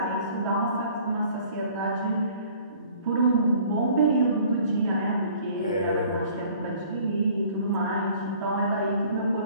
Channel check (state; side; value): inverted; both; correlation -0.54